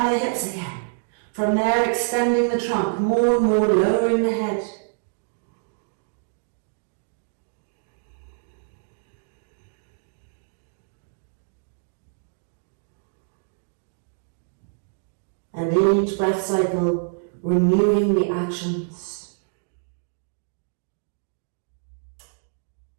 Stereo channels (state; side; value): silent; left; digital silence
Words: the hips again. From there, extending the trunk more and more, lowering the head. And in each breath cycle, renewing the actions.